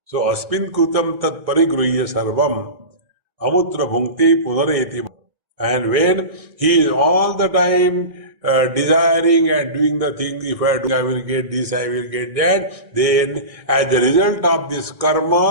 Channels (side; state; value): left; late; 1.6 ms